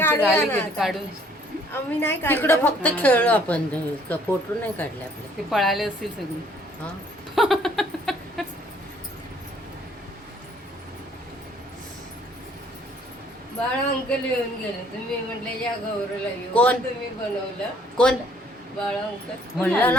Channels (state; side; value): normal; both; correlation 0.61